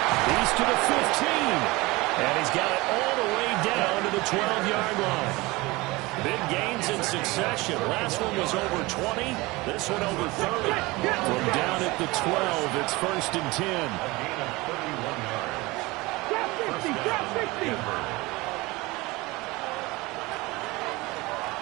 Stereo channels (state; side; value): quieter; left; 22.2 dB